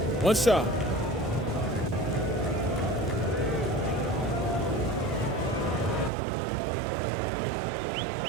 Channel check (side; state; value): left; drops out; at 6.1 s